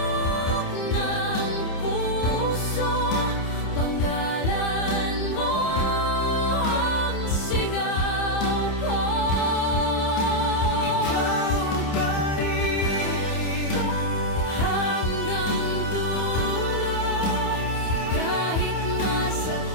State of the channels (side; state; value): right; late; 28 ms